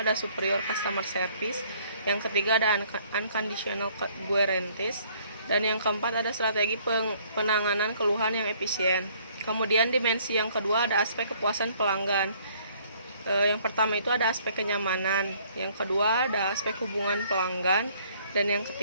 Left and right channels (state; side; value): inverted; both; correlation -0.61